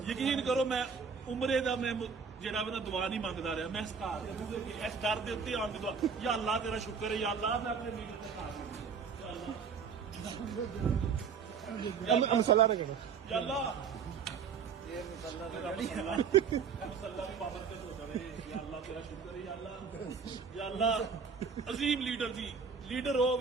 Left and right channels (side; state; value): left; quieter; 6.0 dB